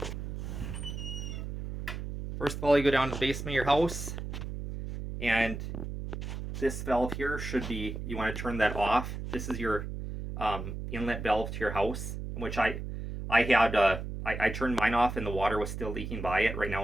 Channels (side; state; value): right; noise; hum, 6 dB below the sound